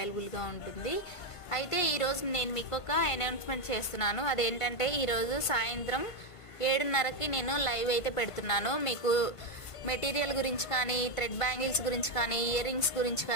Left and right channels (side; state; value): right; late; 1.5 ms